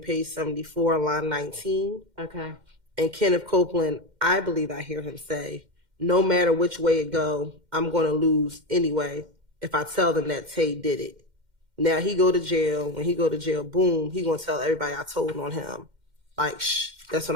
page 74, line 19. Okay. And Kenneth Copeland, I believe I hear him say, no matter which way it go, I'm going to lose anyway if I tell them that Tay did it. Now he go to jail. When he go to jail, boom, he going to tell everybody I told on him. Like, shh, that's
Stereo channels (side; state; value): left; late; 2.1 ms